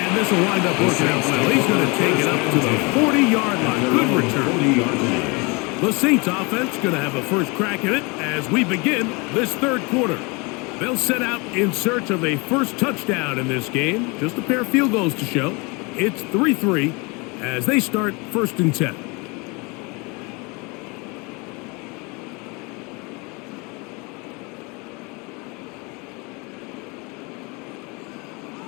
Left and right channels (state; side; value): quieter; right; 28.5 dB